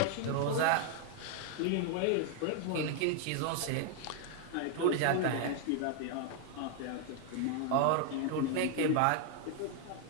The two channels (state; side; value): different; both; correlation 0.00